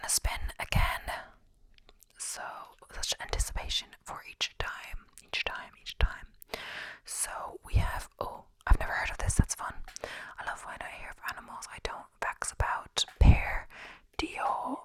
to spin again. So such anticipation.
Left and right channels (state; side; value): identical; both; correlation 1.00